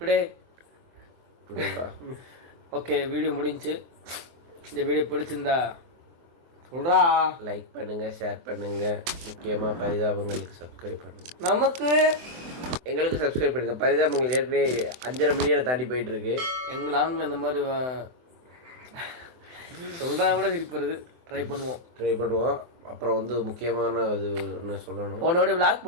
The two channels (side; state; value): left; late; 24 ms